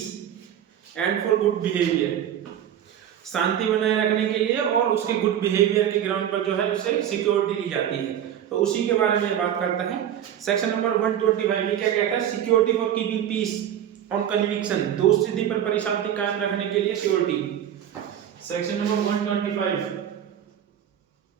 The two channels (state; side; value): quieter; left; 10.2 dB